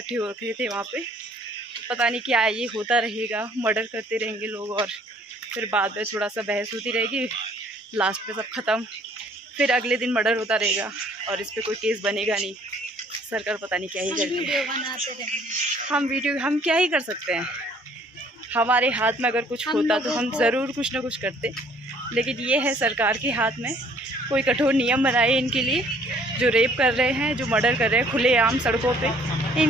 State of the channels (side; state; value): both; normal; correlation 0.59